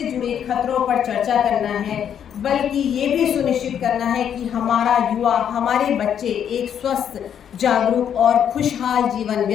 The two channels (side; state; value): right; quieter; 8.9 dB